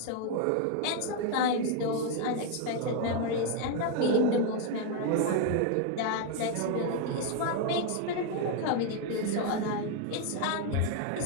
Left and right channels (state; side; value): different; both; correlation 0.01